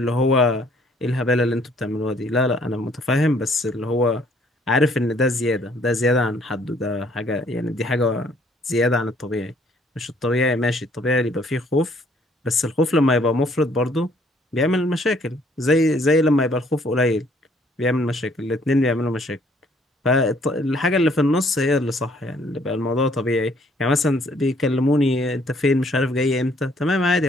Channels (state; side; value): normal; both; correlation 0.63